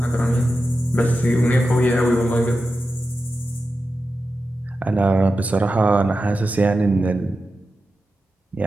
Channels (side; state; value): both; normal; correlation 0.91